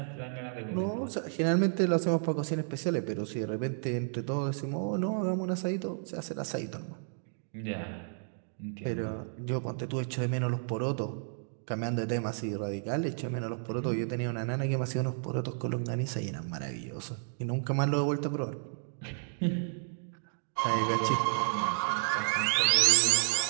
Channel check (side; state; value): left; silent; digital silence